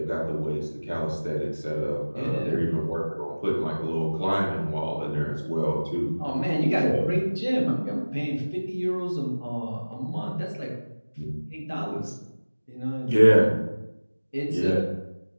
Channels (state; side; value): inverted; both; correlation -1.00